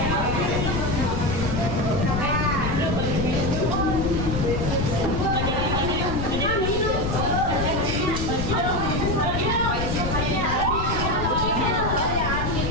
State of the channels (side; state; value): left; noise; rumble, 2 dB below the sound